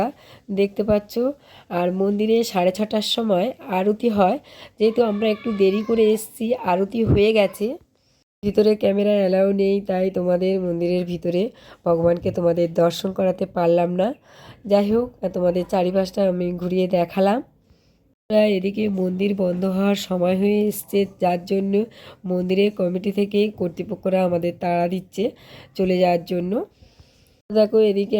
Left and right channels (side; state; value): both; identical; correlation 1.00